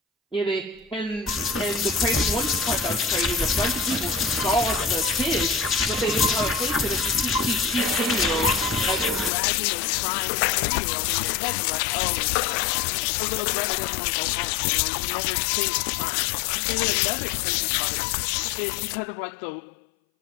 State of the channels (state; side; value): drops out; right; at 9.3 s